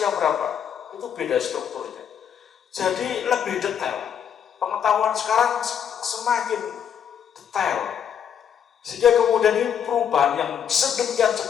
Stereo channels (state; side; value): quieter; right; 8.5 dB